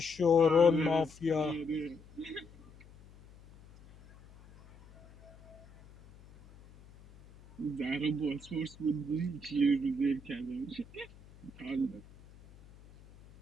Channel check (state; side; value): noise; left; hum, 23 dB below the sound